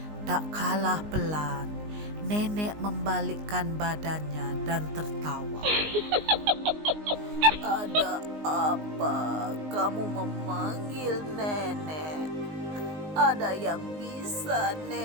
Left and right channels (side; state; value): left; late; 19 ms